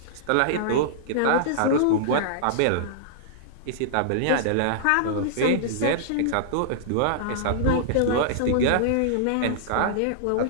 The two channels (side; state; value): both; different; correlation -0.01